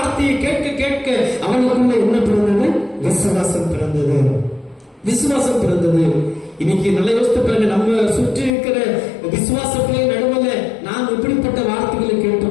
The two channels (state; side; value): drops out; right; at 8.5 s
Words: கேட்க கேட்க அவனுக்குள்ள என்ன பிறந்தது? விசுவாசம் பிறந்தது. விசுவாசம் பிறந்தது. இன்னைக்கு நல்ல யோசித்து பாருங்க, நம்ம சுற்றி இருக்கிற விசுவாச பிள்ளை நடுவில் நாங்க